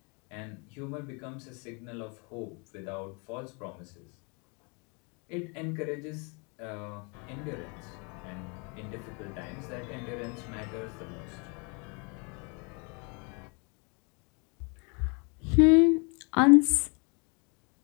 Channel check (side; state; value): right; quieter; 33.7 dB